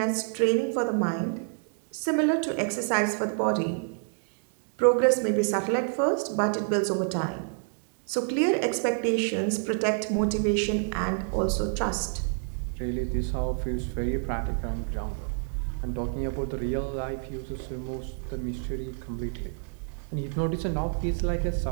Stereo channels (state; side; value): silent; left; 59 dB below the other